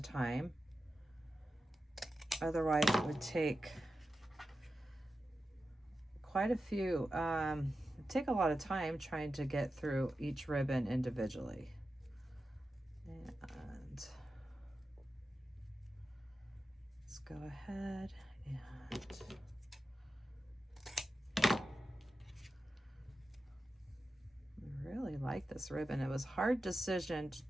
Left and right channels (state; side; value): normal; both; correlation 0.92